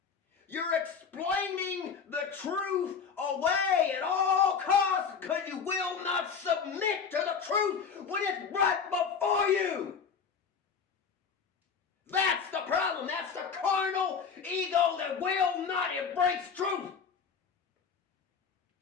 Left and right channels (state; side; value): quieter; right; 6.2 dB